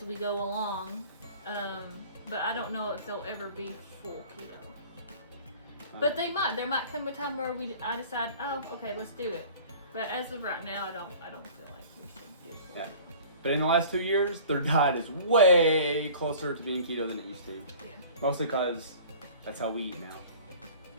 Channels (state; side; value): inverted; both; correlation -0.45